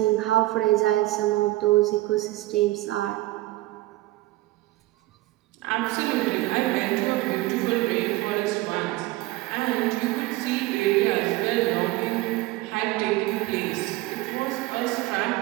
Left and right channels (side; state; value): left; quieter; 18.4 dB